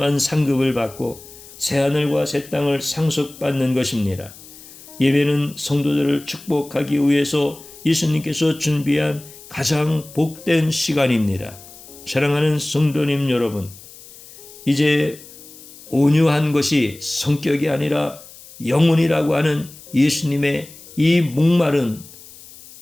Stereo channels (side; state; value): left; noise; hiss, 19 dB below the sound